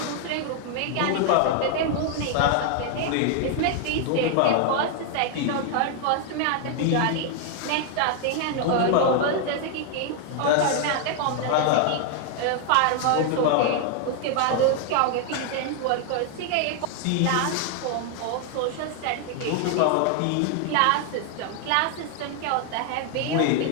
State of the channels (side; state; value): both; different; correlation 0.00